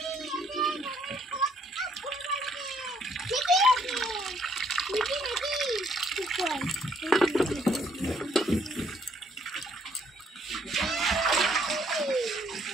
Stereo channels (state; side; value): normal; both; correlation 0.67